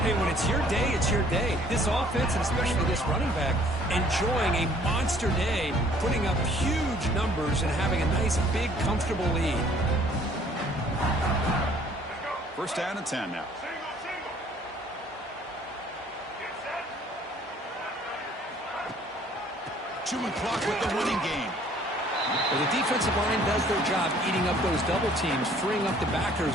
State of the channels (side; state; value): both; normal; correlation 0.58